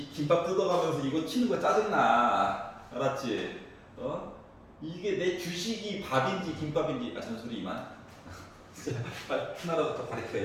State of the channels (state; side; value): identical; both; correlation 1.00